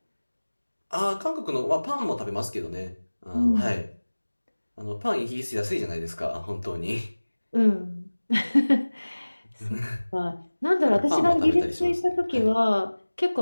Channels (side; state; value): both; inverted; correlation -1.00